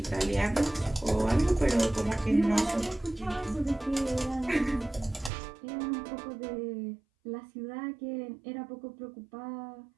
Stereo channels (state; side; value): drops out; left; at 5.3 s